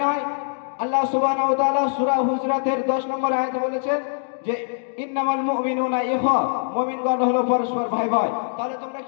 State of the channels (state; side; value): silent; right; digital silence